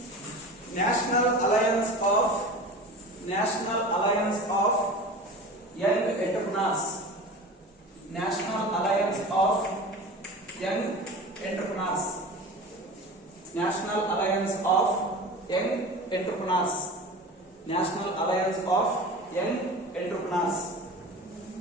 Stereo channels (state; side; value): normal; both; correlation 0.34